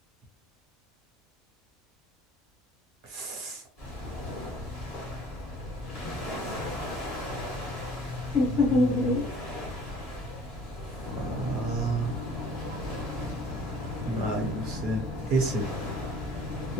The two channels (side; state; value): both; normal; correlation 0.52